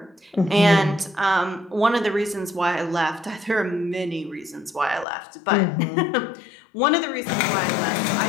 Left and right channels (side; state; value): right; drops out; at 5.1 s